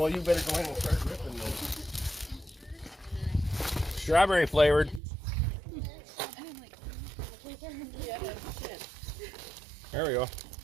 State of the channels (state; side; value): drops out; left; at 5.0 s